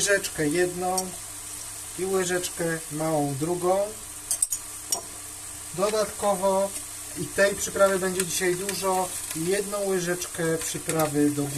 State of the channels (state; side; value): identical; both; correlation 1.00